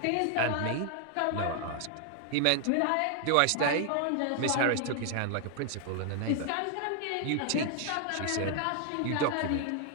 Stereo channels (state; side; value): different; both; correlation 0.00